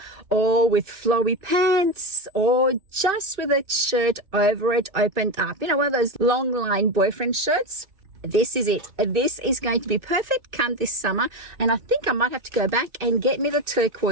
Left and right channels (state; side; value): late; left; 2.6 ms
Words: or with flowy pants or just with a shirt over it opened up. You know, one of those long line boyfriend shirts. This is it. This is going to be perfect come this summer, and I think I might have to go back and get me the